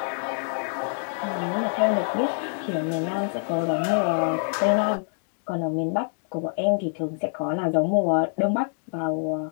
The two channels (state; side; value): silent; right; 61 dB below the other